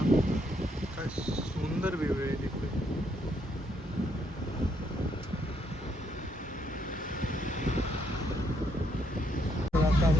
काय सुंदर व्ह्यू आहे तिथे. तर आता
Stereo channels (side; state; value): both; normal; correlation 0.73